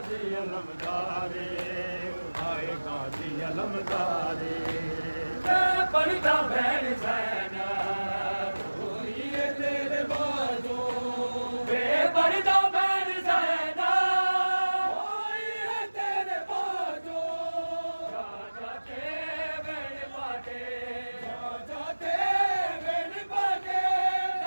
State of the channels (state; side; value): inverted; both; correlation -1.00